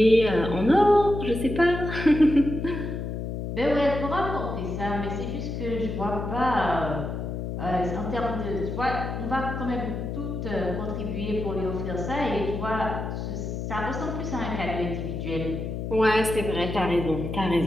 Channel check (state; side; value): noise; left; hum, 5 dB below the sound